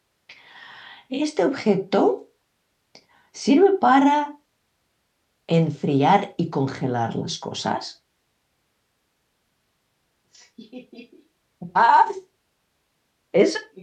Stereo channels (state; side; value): identical; both; correlation 1.00